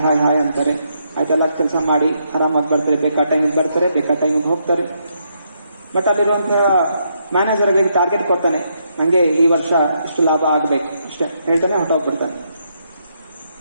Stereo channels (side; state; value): both; inverted; correlation -0.77